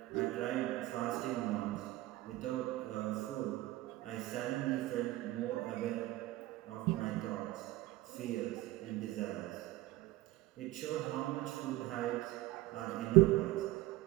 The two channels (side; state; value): left; quieter; 17.9 dB